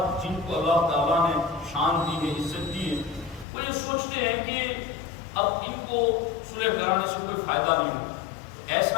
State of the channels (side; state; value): right; drops out; at 3.5 s